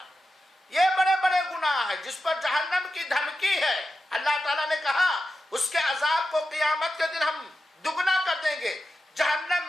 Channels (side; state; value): both; normal; correlation 0.90